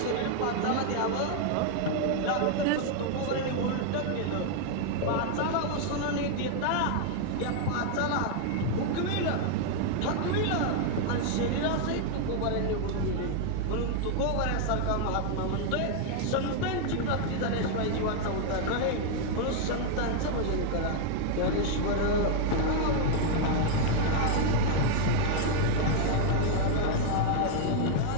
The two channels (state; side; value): different; both; correlation 0.00